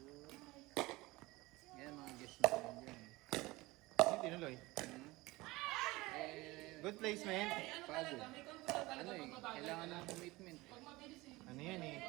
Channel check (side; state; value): left; quieter; 21.0 dB